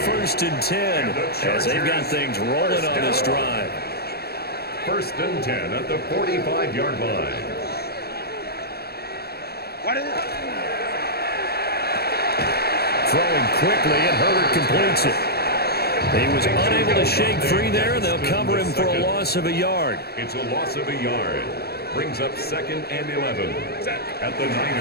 and 10, as they've got things rolling on this drive. 1st and 10 at the 45-yard line. Throwing quickly, and Herbert completes it. He was unable to shake free there, and they'll cover him for a loss of a yard. It's a loss of a yard. Brings up 2nd and 11 at the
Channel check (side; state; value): right; late; 0.46 ms